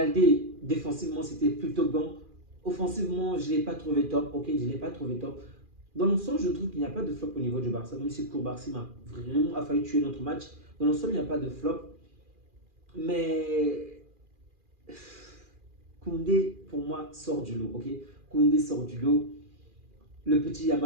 défensivement, c'était plutôt bon. Offensivement, je ne l'ai pas trouvé top, ok, je ne l'ai pas trouvé top. Dans l'ensemble, je trouve qu'il n'y a pas de flop au niveau du Barça, même si Koubarsi m'a vraiment failli tuer notre match. Dans l'ensemble, il n'y a pas de flop. Mais Koundé, pour moi, sort du lot, ok? Koundé sort du lot. Le petit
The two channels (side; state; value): left; late; 2.4 ms